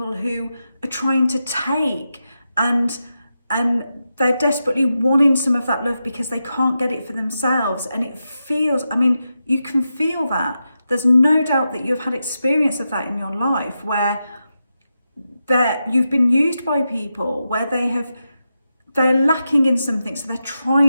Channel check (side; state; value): both; inverted; correlation -0.88